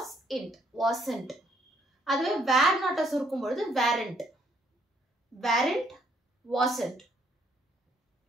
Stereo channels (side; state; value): both; normal; correlation 0.69